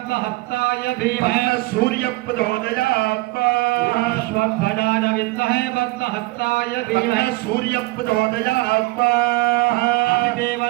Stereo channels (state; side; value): quieter; left; 21.5 dB